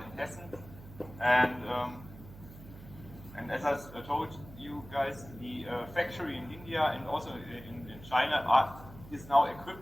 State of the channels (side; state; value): right; noise; hum, 17 dB below the sound